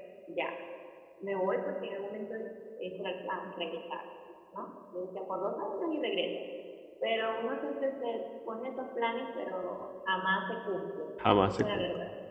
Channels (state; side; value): identical; both; correlation 1.00